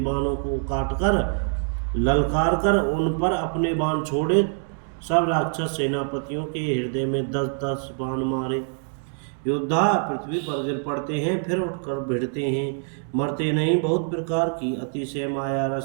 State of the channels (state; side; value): silent; left; 56 dB below the other